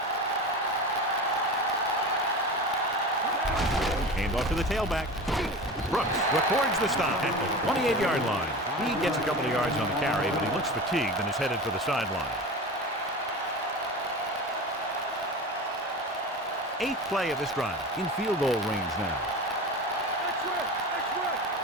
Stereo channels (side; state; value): both; normal; correlation 0.31